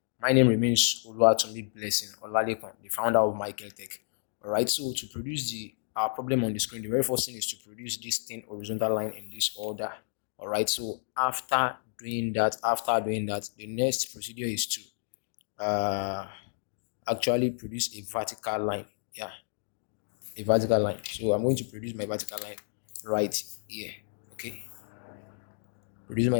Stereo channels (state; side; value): silent; right; digital silence